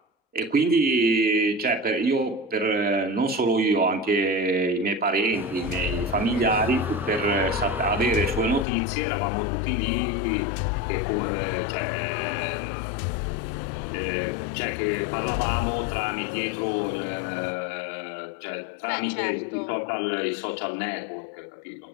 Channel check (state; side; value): drops out; right; at 8.7 s